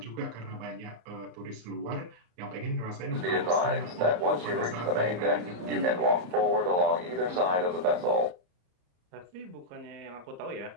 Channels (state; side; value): late; left; 34 ms